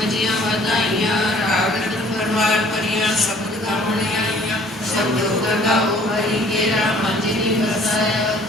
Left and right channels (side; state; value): both; normal; correlation 0.56